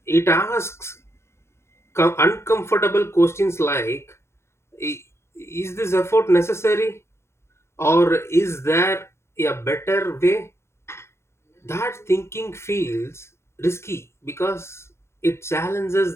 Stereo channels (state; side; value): late; right; 0.13 ms